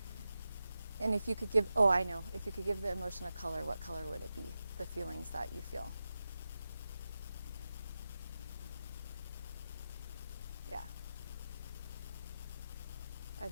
And if you could give, I know, if you could give the emotion a color, what color would it be? The feelings that you feel. Yeah. Are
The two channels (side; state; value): both; inverted; correlation -0.91